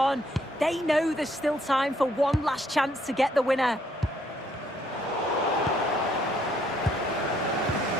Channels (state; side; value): normal; both; correlation 0.68